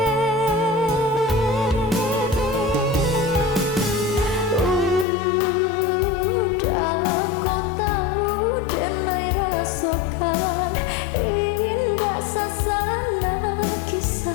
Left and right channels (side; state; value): right; drops out; at 5.1 s